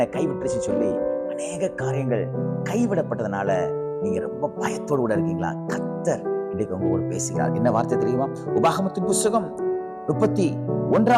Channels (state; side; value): identical; both; correlation 1.00